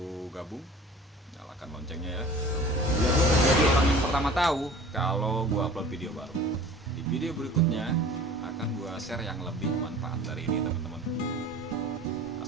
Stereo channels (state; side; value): normal; both; correlation 0.44